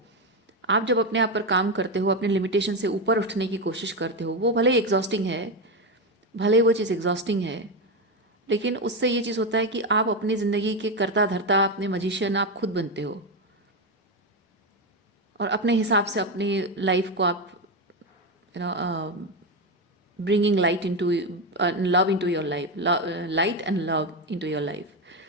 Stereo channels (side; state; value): both; normal; correlation 0.11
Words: आप जब अपने आप पर काम करते हो, अपने लिमिटेशन से ऊपर उठने की कोशिश करते हो, वो भले ही एग्जॉस्टिंग है, भले ही वो चीज़ एग्जॉस्टिंग है, लेकिन उससे ये चीज़ होता है कि आप अपनी ज़िंदगी के कर्ता धर्ता, अपने मजिशियन आप खुद बनते हो, और अपने हिसाब से अपनी लाइफ को आप you know bringing light into love into your life, light and love into your life।